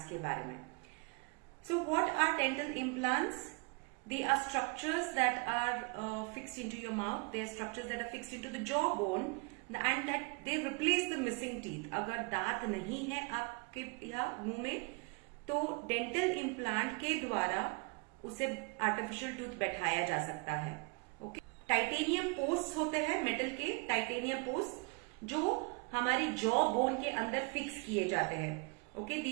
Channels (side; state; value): left; quieter; 31.9 dB